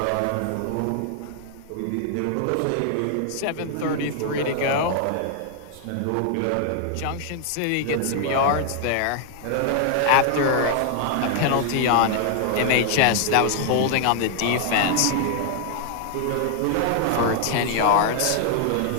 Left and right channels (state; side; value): different; both; correlation 0.00